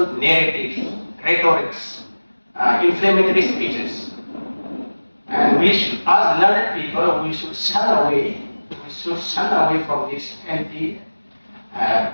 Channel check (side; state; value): both; inverted; correlation -1.00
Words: narratives, rhetorics, inflammatory speeches. And we should, as learned people, we should shun away from these